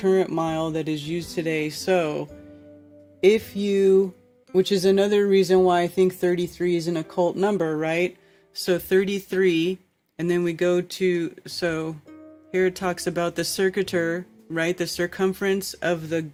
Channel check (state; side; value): identical; both; correlation 1.00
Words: mile that is used today. So if you, which is another reason why I think 33 is an occult number, right? So 33, and then we go to, so here it talks about the circuiter, right? The circumference of the